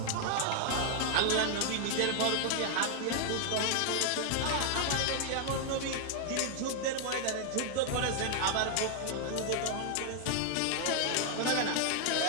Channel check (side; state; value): both; different; correlation 0.00